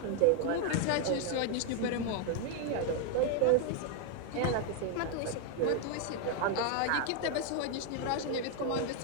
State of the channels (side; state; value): both; different; correlation 0.00